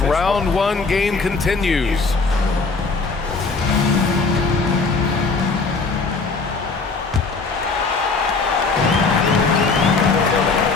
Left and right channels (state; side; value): quieter; right; 4.2 dB